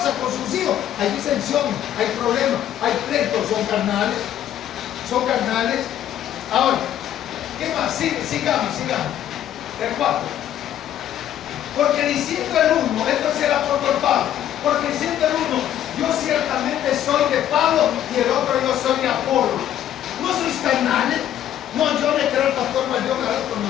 con sus hijos. Hay disensiones, hay problemas, hay pleitos. Son carnales. Son carnales. Ahora, ¿qué más? Sigamos. El 4. Porque diciendo el uno, esto es el apóstol Pablo, porque diciendo el uno, yo ciertamente soy de Pablo y el otro yo soy de Apolo. ¿No sois carnales? No, yo le creo al pastor Valdión, al otro no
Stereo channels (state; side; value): quieter; right; 11.2 dB